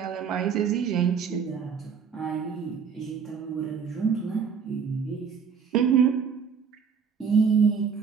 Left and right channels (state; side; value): quieter; left; 6.5 dB